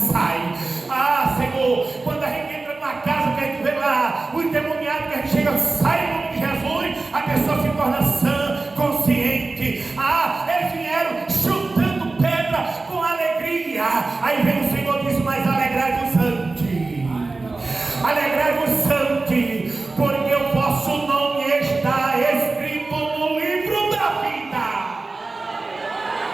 Ah, Senhor, quando a gente entra numa casa que a gente vê lá o endemoniado, que a gente chega, sai em nome de Jesus, a pessoa se torna sã, consciente. Ah, eles vieram chutando pedra com alegria. Aí vem o Senhor e diz: mas alegrai-vos ante, alegrai-vos ante, porque o vosso nome está escrito no livro da vida.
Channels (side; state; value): left; quieter; 3.5 dB